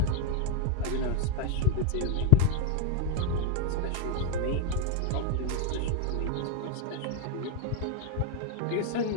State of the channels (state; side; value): different; both; correlation 0.01